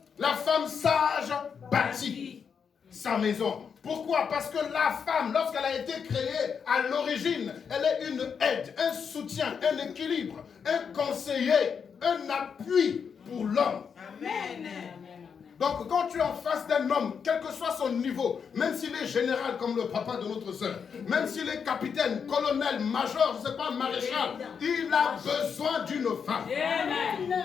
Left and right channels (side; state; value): right; quieter; 6.6 dB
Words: La femme sage bâtit sa maison. Pourquoi? Parce que la femme, lorsqu'elle a été créée à l'origine, elle est une aide, un soutien, un équilibre, un conseiller, un appui pour l'homme. Amen. Donc quand tu es en face d'un homme, quel que soit son niveau, même s'il est général comme le papa de notre soeur, même s'il est capitaine, colonel, major, je ne sais pas, maréchal, il a besoin d'une femme.